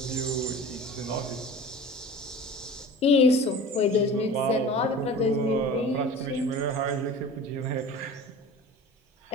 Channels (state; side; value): normal; both; correlation 0.38